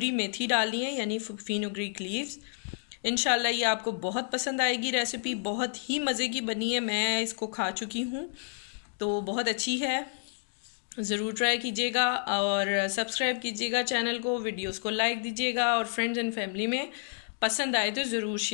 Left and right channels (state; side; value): silent; right; digital silence